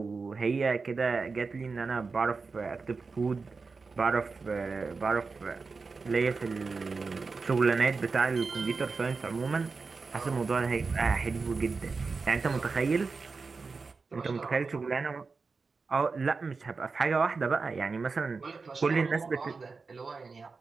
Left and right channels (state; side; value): quieter; left; 4.4 dB